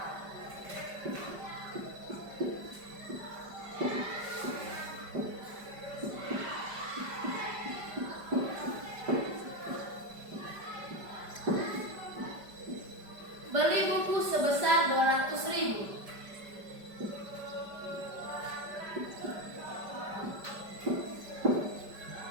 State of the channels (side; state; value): left; late; 5.1 ms